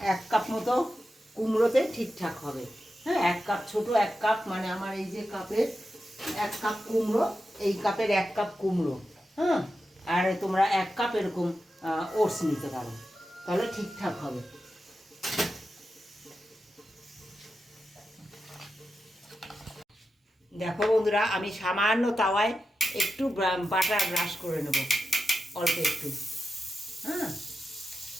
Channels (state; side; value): normal; both; correlation 0.90